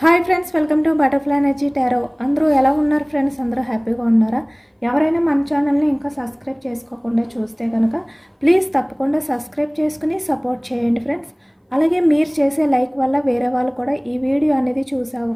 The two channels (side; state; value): both; identical; correlation 1.00